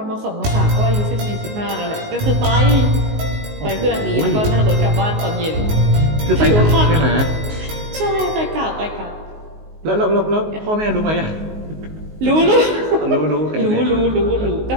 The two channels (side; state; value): left; late; 19 ms